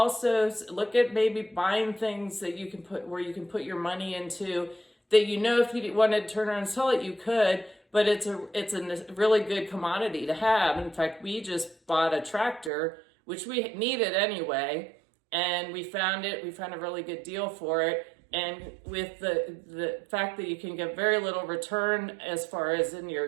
look at maybe buying things that you can put your money into, that if you wanted to turn around and sell it, you could, but it's a really good commodity to have. In fact, we just bought a tractor, which we needed anyway, and we found a really good deal for it. And with the fact that you can get very little return as far as in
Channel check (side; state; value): left; drops out; at 12.7 s